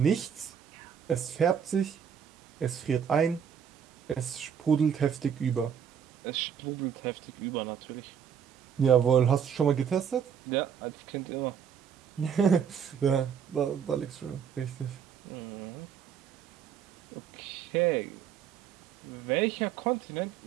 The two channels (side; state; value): left; quieter; 8.0 dB